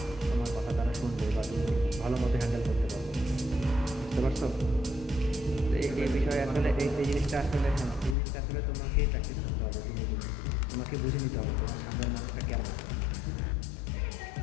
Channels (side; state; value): right; drops out; at 8.2 s